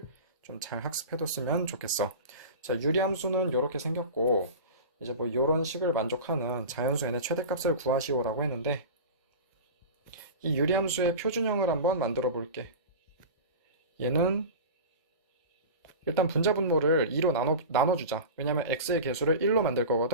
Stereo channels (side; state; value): both; inverted; correlation -0.30